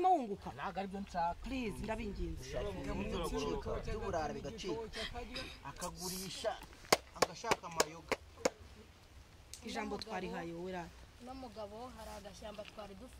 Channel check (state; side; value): identical; both; correlation 1.00